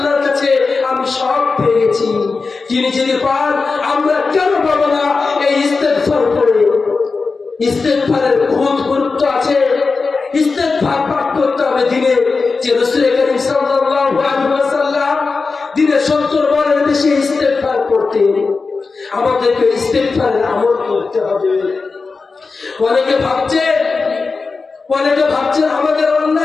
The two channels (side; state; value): right; quieter; 4.3 dB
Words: কাছে আমি সব পেয়ে গেছি। তিনি যদি পান, আমরা কেন পাবো না? এই ইস্তেগফার করে। ইস্তেগফারের বহুত গুরুত্ব আছে। ইস্তেগফার পাঠ করতে হবে দিনে, যে রাসূল করিম সাল্লাল্লাহু আলাইহি ওয়াসাল্লাম দিনে 70 বারের বেশি ইস্তেগফার করতেন। আমাদেরকে ইস্তেগফারের আমল করতে হবে। অনেকে ভাবছেন আমাদের